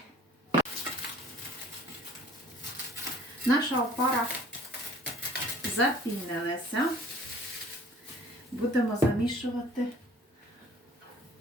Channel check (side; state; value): both; normal; correlation 0.52